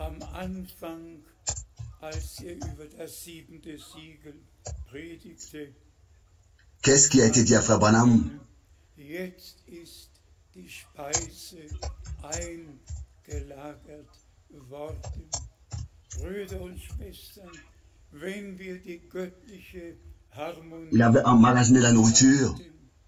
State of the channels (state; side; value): identical; both; correlation 1.00